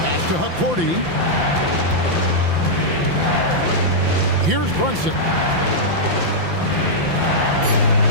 to Akordy. Here's Brunson.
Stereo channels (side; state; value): left; late; 5.9 ms